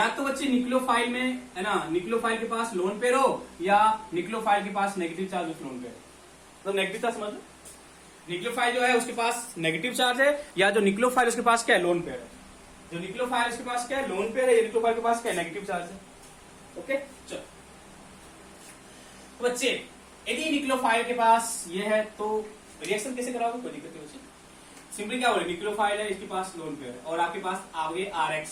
तो बच्चे न्यूक्लियोफाइल में है ना, न्यूक्लियोफाइल के पास लोन पेयर हो, या न्यूक्लियोफाइल के पास negative charge with lone pair. तो नेगेटिव चार्ज समझ लो, न्यूक्लियोफाइल जो है उसके पास नेगेटिव चार्ज है, या जो न्यूक्लियोफाइल उसके पास क्या है? लोन पेयर है। जो न्यूक्लियोफाइल उसके पास क्या है? लोन पेयर है। या न्यूक्लियोफाइल के पास क्या है? नेगेटिव चार्ज है। ओके, चलो तो बच्चे यदि न्यूक्लियोफाइल के पास ये है तो रिएक्शन कैसे कराओगे? कोई दिक्कत नहीं बच्चे। सिंपली क्या बोले, न्यूक्लियोफाइल है, इसके पास लोन पेयर है, और आपके पास आगे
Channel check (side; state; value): both; identical; correlation 1.00